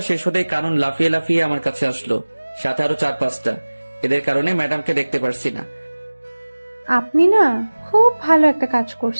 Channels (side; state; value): both; inverted; correlation -1.00